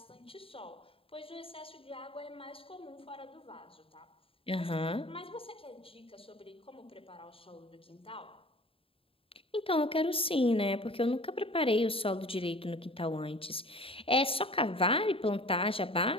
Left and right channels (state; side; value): late; right; 0.27 ms